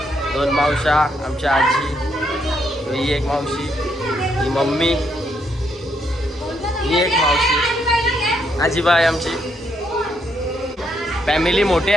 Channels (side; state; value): both; normal; correlation 0.76